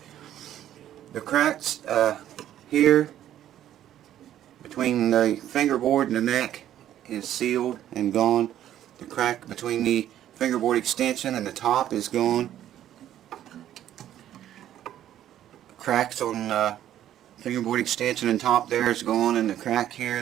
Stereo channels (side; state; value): left; quieter; 11.7 dB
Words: The cracks here between the fingerboard and the neck is sealed and gone. The crack between the fingerboard extension and the top is gone. Cracks on fingerboard extension and top there is gone, and the crack here